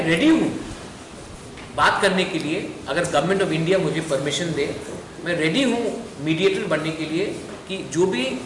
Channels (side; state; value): both; identical; correlation 1.00